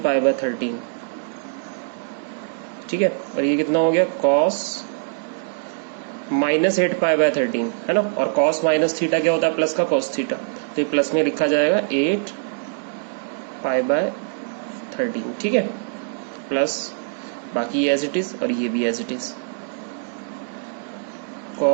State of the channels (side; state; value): left; silent; digital silence